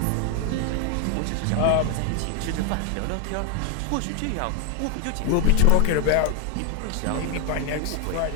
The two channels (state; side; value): different; both; correlation 0.00